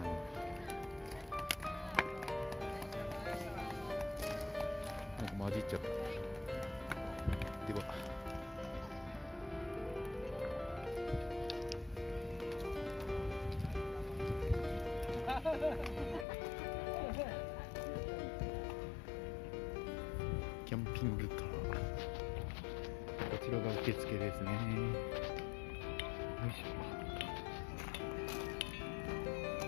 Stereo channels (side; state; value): right; drops out; at 16.2 s